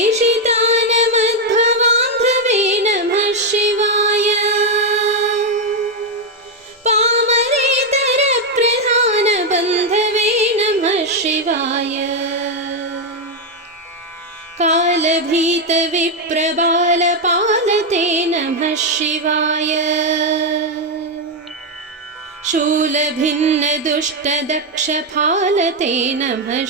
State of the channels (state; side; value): normal; both; correlation 0.03